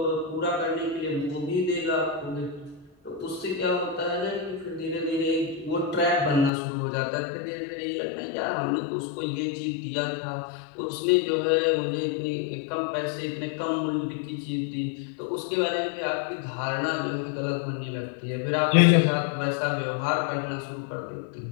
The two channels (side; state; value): right; drops out; at 6.5 s